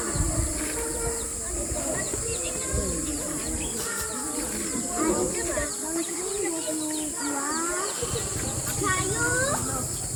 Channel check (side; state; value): both; identical; correlation 1.00